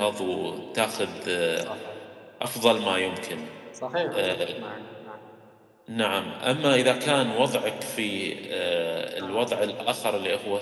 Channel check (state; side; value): identical; both; correlation 1.00